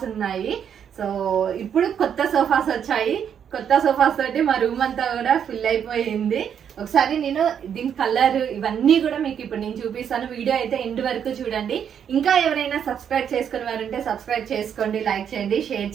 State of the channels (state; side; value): quieter; left; 8.3 dB